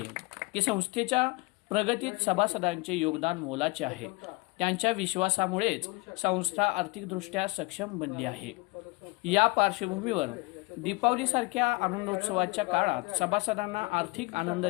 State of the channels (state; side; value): quieter; right; 26.0 dB